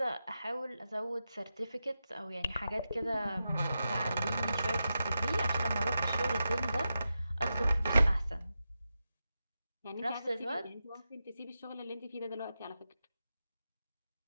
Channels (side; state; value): both; inverted; correlation -0.89